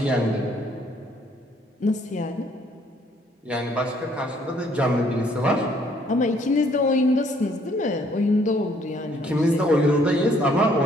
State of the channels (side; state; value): both; normal; correlation 0.64